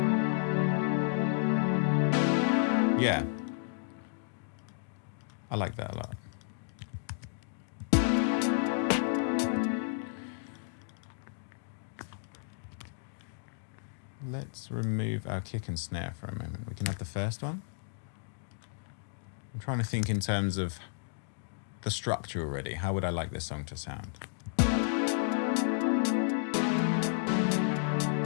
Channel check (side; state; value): right; silent; digital silence